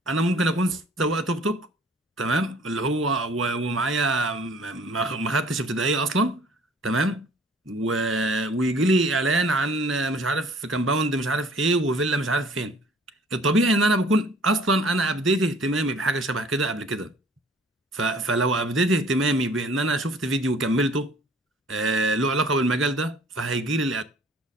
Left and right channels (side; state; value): both; normal; correlation 0.53